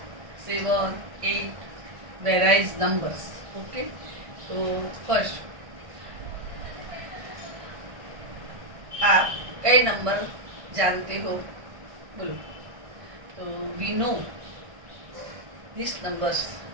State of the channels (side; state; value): left; late; 1.4 ms